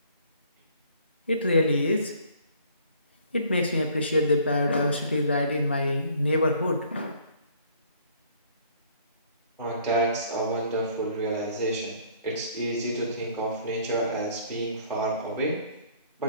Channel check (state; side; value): inverted; both; correlation -0.58